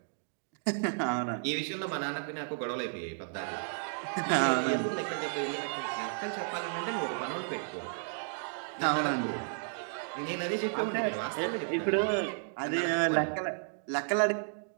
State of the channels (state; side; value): silent; left; digital silence